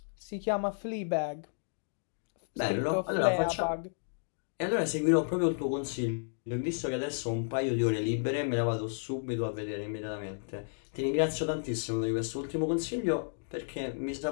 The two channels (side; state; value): right; silent; digital silence